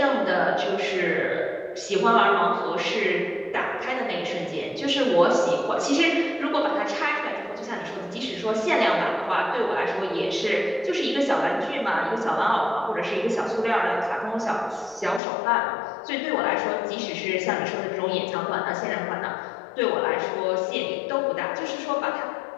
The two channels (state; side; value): drops out; right; at 15.2 s